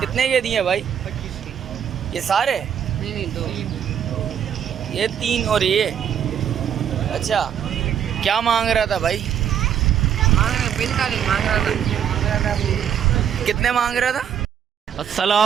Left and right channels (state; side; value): quieter; left; 8.9 dB